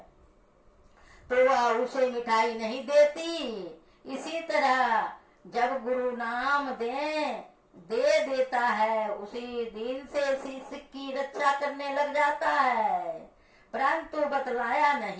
तो वह उसे मिठाई नहीं देती। इसी तरह जब गुरु नाम दे देता है, उसी दिन से शिष्य की रक्षा करने लग जाता है, परंतु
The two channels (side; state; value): both; identical; correlation 1.00